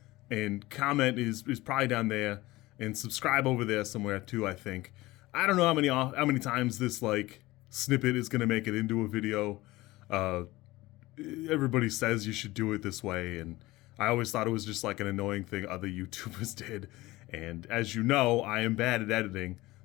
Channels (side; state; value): right; quieter; 19.2 dB